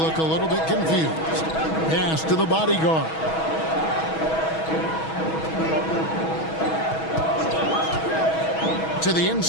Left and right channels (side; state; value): right; late; 6.2 ms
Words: a little bit confused. Pass to the bodyguard. To the